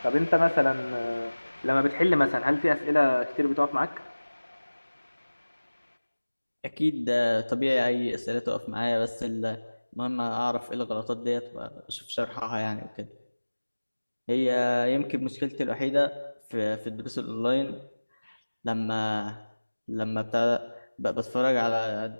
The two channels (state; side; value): inverted; both; correlation -1.00